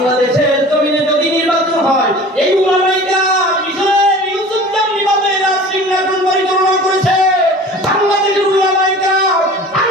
জমিনে যদি নির্বাচন হয় এই উলামাইরা মিশরের ইউসুফ যেমনিভাবে রাজসিংহাসন পরিচালনা করেছে, বাংলাদেশের উলামাইরা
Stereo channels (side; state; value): both; normal; correlation 0.42